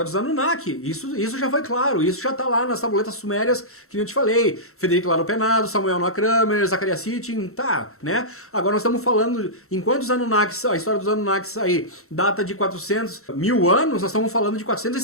dos Anunnaki. Isso já foi claro, isso já tá lá nas tabuletas sumérias que eu te falei. Federico Laro Penado, Samuel Noah Kramer, Zacharias Sitchin, tá, né? Agora nós estamos falando, enquanto os Anunnakis, a história dos Anunnakis aí data de 400 mil anos, nós estamos falando de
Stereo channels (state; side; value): late; right; 0.63 ms